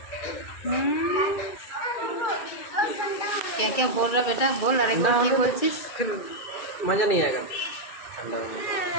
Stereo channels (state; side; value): late; right; 2.4 ms